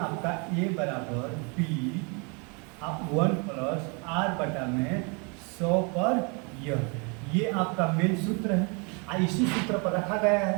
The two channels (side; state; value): left; quieter; 33.3 dB